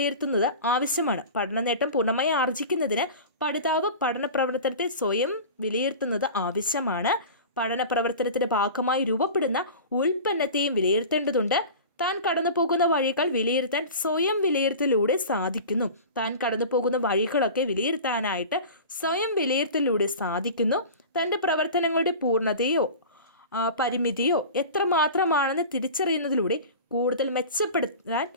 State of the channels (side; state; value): both; inverted; correlation -0.35